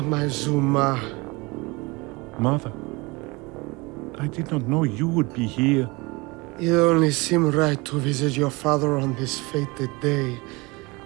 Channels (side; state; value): left; quieter; 25.1 dB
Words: my Zuma. Mother, I did not know you would be here. It only seemed right to visit your father on this fated day.